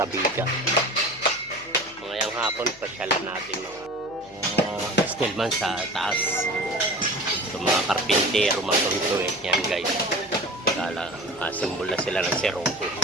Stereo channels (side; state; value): left; noise; hum, 25 dB below the sound